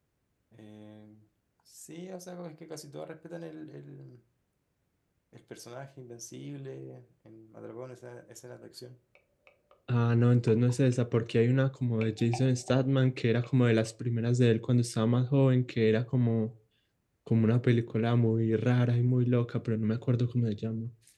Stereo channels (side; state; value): both; identical; correlation 1.00